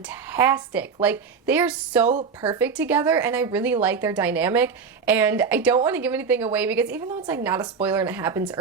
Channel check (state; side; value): quieter; left; 5.7 dB